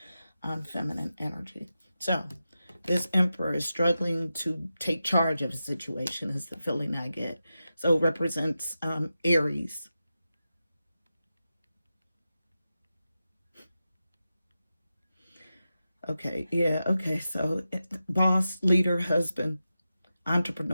on feminine energy. So this emperor is struggling to take charge of a situation is the feeling I get. So it represents Aries. Okay, yeah, okay. So boss, leader, husband,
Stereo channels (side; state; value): both; inverted; correlation -0.91